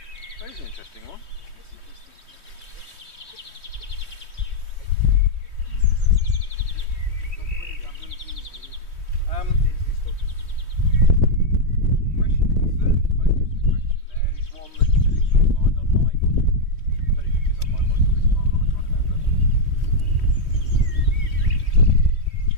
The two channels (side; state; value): right; late; 3.1 ms